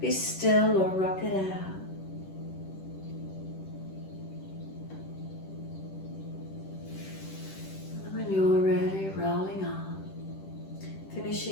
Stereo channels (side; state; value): right; late; 10 ms